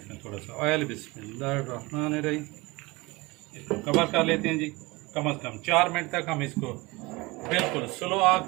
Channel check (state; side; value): quieter; left; 23.5 dB